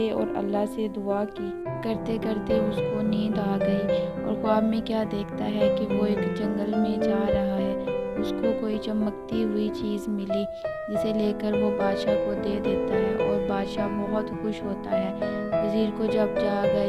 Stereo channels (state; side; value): identical; both; correlation 1.00